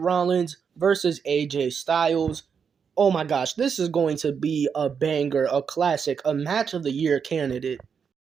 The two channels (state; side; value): quieter; left; 6.6 dB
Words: versus AJ Styles. Oh my gosh, this is going to be a banger, a classic, a match of the year candidate.